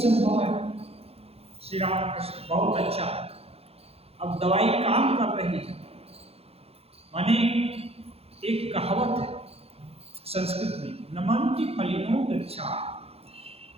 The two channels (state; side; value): late; left; 0.29 ms